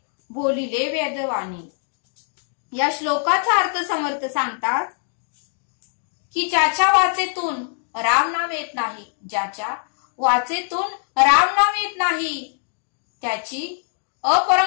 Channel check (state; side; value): silent; right; 64 dB below the other